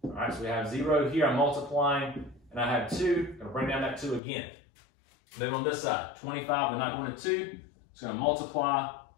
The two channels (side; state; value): right; drops out; at 4.2 s